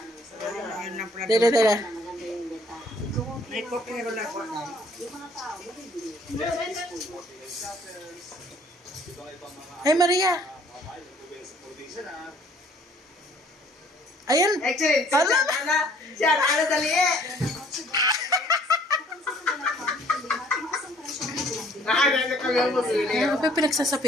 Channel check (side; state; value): both; normal; correlation 0.59